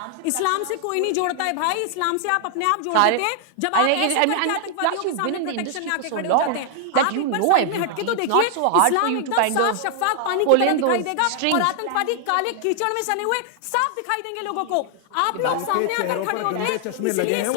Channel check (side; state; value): both; different; correlation 0.00